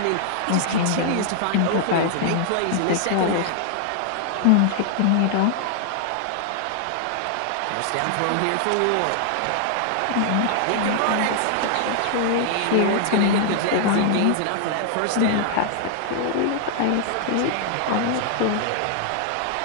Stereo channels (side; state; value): both; different; correlation -0.01